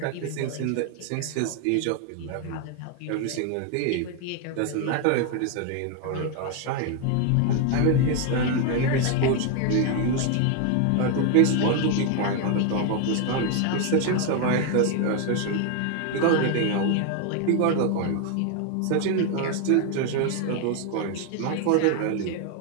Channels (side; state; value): both; different; correlation 0.01